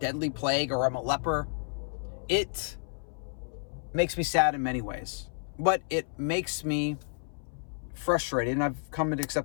plague or I'm a leper. It makes me sad in many ways, but it makes me frustrated, and I've come to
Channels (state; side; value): silent; right; 57 dB below the other